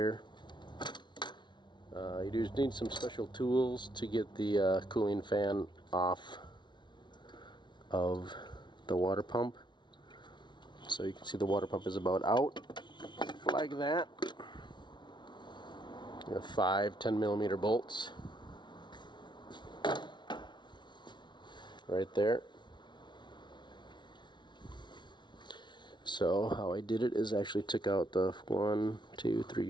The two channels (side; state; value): right; late; 0.22 ms